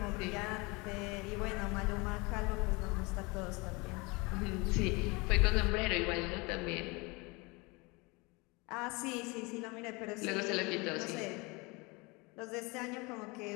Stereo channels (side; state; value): right; quieter; 26.5 dB